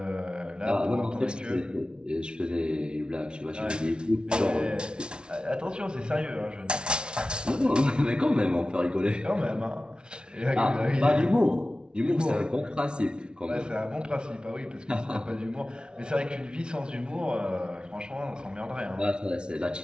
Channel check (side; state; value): left; late; 0.056 ms